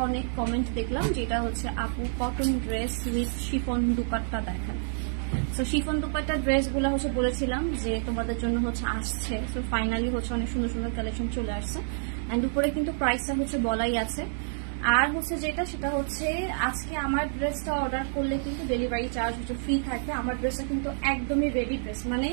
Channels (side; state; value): left; silent; digital silence